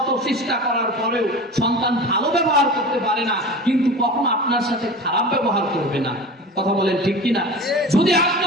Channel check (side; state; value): both; normal; correlation 0.33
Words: চেষ্টা করার পরেও সন্তান ভালো ব্যবহার করতে পারে না, কিন্তু কখনো আপনার সাথে খারাপ ব্যবহার করবে না। কথা বলেন ঠিক কিনা? যদি আপনি